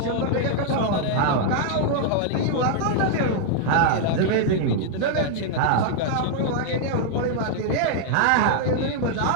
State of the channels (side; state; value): both; different; correlation 0.00